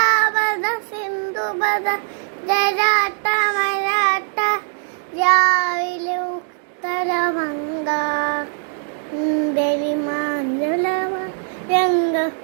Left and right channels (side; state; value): left; silent; digital silence